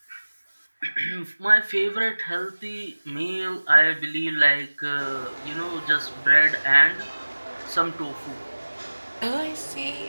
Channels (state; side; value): inverted; both; correlation -1.00